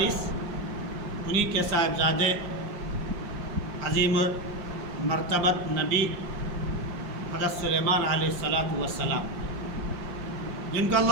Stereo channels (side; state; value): left; late; 5.0 ms